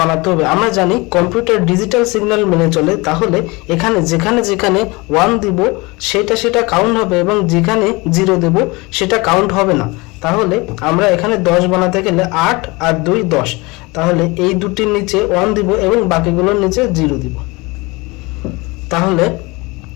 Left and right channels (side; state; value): right; quieter; 24.7 dB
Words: বানাতে হবে। আমরা জানি কম্পিউটার ডিজিটাল সিগন্যাল মেনে চলে। তাহলে এখানে যেখানে যেখানে 1 দিব সেটা কাউন্ট হবে এবং যেখানে 0 দেব সেটা কাউন্ট হবে না। তাহলে আমরা এখানে 10 বানাতে গেলে 8 আর 2 10। তাহলে এই দুটির নিচে 1 দিব এবং বাকিগুলোর নিচে 0 দিব। তাহলে